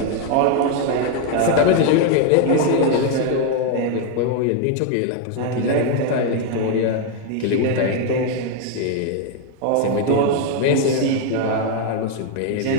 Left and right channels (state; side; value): different; both; correlation 0.00